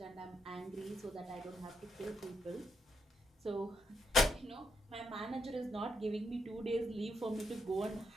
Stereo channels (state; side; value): normal; both; correlation 0.80